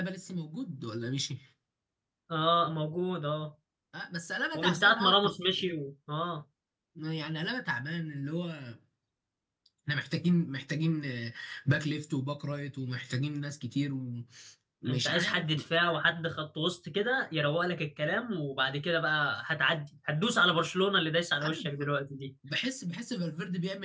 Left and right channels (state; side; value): identical; both; correlation 1.00